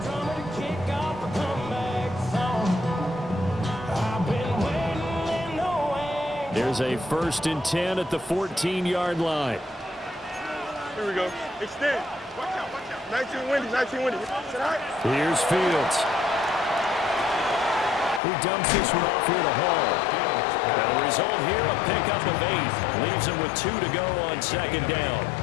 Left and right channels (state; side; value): drops out; right; at 18.2 s